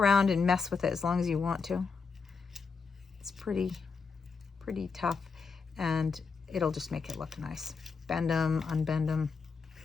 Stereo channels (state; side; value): quieter; right; 5.1 dB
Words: and mess with it as long as you want to. It's pretty tough, and it'll just make it look nice. Bend them, unbend them.